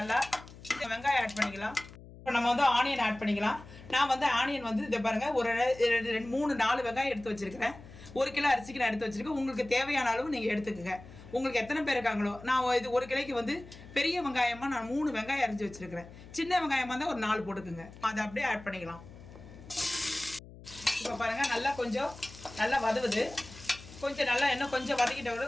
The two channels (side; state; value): left; noise; hum, 18 dB below the sound